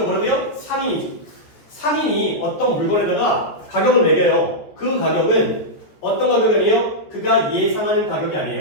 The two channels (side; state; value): right; late; 14 ms